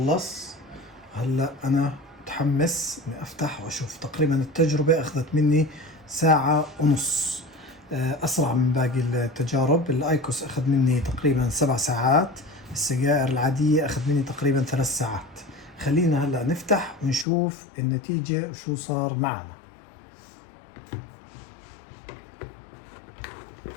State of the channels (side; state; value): right; drops out; at 17.2 s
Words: هلا انا متحمس اني افتح واشوف. تقريبا التجربة اخذت مني 1.5 ساعة. اسرع من باقي التجارب. الايكوس اخذ مني تقريبا 7 ساعات. السجائر العادية اخذ مني تقريبا 3 ساعات. خلينا هلا نفتح ونشوف النتيجة وشو صار معنا.